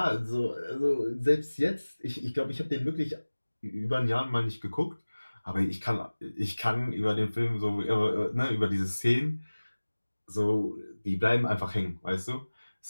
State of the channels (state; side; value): inverted; both; correlation -1.00